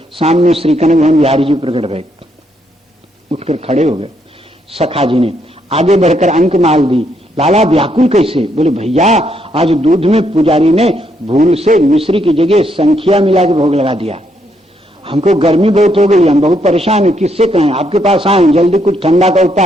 सामने श्री कनक भवन बिहारी जी प्रकट भये, उठकर खड़े हो गए। सखा जी ने आगे बढ़कर अंक माल दी। लाला व्याकुल कैसे? बोले भैया आज दूध में पुजारी ने भूल से मिश्री की जगह संख्या मिला के भोग लगा दिया। हमको गर्मी बहुत हो गई, हम बहुत परेशान हैं, किससे कहें? आपके पास आए, जल्दी कुछ ठंडा का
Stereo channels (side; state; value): both; normal; correlation 0.75